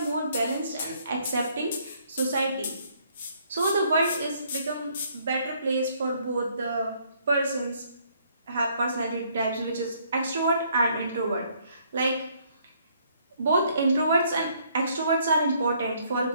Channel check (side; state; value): both; inverted; correlation -0.66